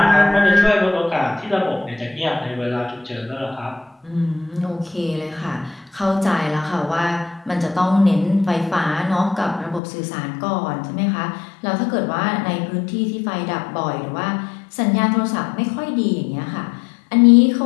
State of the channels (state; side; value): drops out; right; at 9.8 s